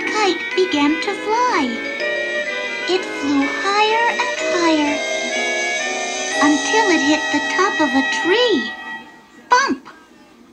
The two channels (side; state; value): both; identical; correlation 1.00